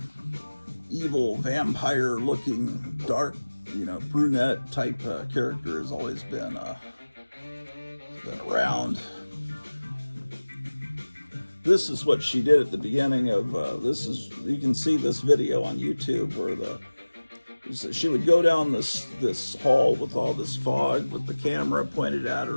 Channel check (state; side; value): inverted; both; correlation -1.00